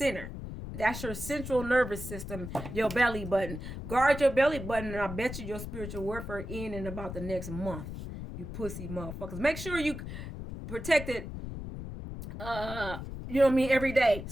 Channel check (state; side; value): noise; left; rumble, 8 dB below the sound